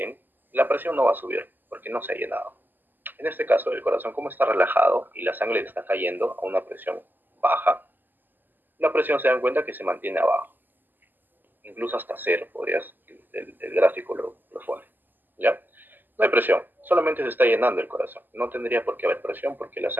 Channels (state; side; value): late; left; 0.089 ms